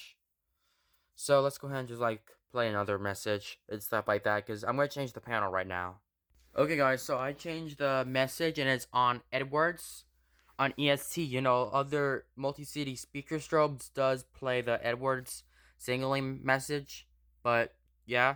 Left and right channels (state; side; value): identical; both; correlation 1.00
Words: So let's go ahead and just like play another message and stuff like that, because I'm going to change the panel right now. Okay guys, so I changed the message and it's on Edwards. On ESC, other multi-city speaker strobes does play the Edwards signaling message. But yeah,